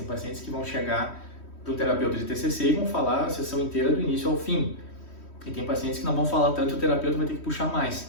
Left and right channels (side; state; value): right; late; 3.1 ms